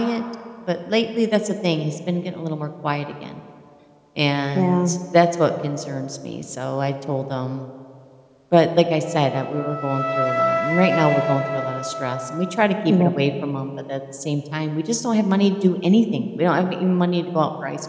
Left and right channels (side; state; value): both; identical; correlation 1.00